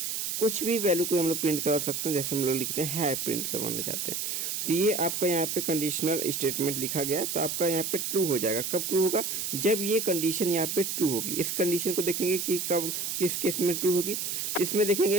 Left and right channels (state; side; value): noise; right; hiss, 2 dB below the sound